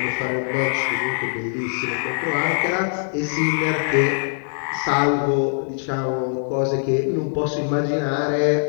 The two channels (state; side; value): silent; right; digital silence